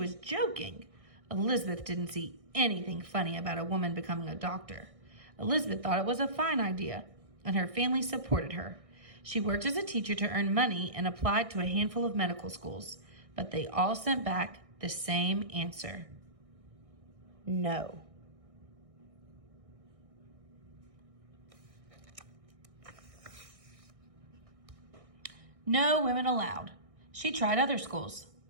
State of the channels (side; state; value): left; late; 1.6 ms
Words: joking. Elizabeth didn't see anything funny about a woman becoming a doctor. Elizabeth thought it was a fine idea, and her family supported her. She worked as a teacher to earn money and applied to a handful of medical schools, but they all sent back the same answer. No. No women allowed. She tried other schools.